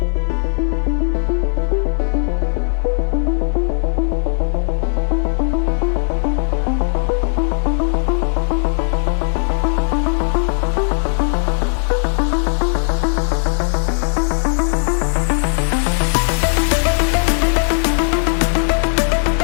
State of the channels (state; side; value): silent; right; 58 dB below the other